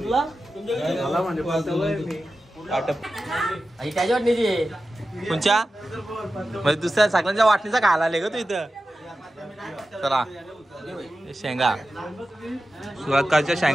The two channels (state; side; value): normal; both; correlation 0.93